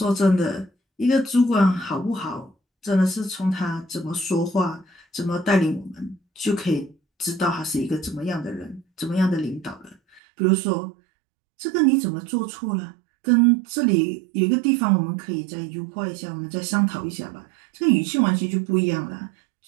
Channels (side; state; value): left; drops out; at 10.2 s